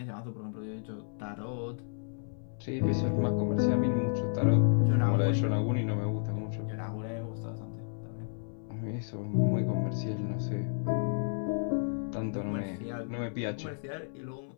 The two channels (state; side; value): silent; right; 56 dB below the other